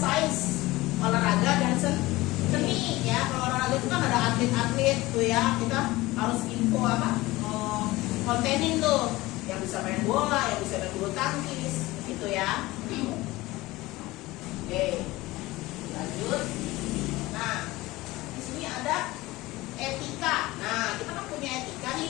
olahraga dan seni ya. Kalau olahraga itu kan ada atlet-atlet tuh ya, kita harus info apa, kontenin tuh yang bisa main bola, yang bisa main bulu tangkis, gitu ya. Oke, lanjut. Nah, di sini ada etika. Nah, kita kan punya etika nih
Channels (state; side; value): quieter; right; 19.4 dB